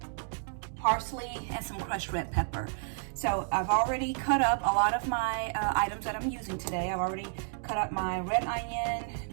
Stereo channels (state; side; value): silent; left; 57 dB below the other